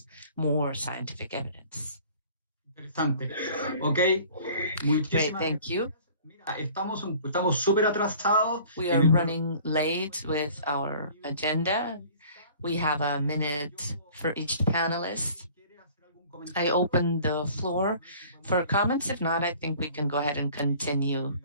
more scientific evidence. Interesante. Ok. Great, thank you. Estamos súper atrasados. We are running late with our agenda. We have a minute for each panelist. I open the floor for comments. If not, I think we can go ahead and continue.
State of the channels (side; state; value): both; inverted; correlation -0.49